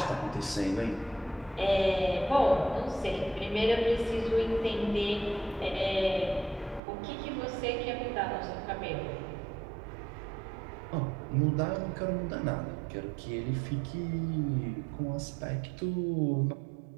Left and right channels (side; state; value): left; drops out; at 6.8 s